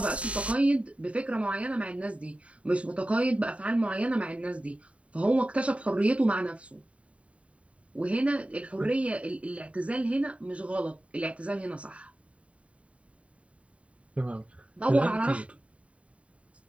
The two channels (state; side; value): late; left; 0.064 ms